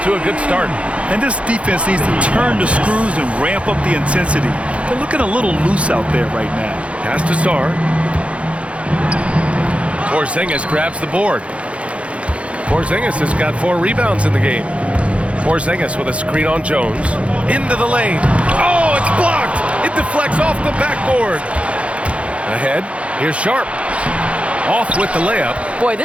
to a good start. And this defense needs to turn the screws and ramp up the intensity. They're looking a little loose out there right now. Pass to Sarr. Porzingis grabs the board. Porzingis has got 4 rebounds in the game. Porzingis with a screen on Jones. Into the lane. Oh, it's blocked. It deflects off the backboard. Ahead, here's Sharp. Off with the layup. Boy,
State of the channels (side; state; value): left; late; 0.062 ms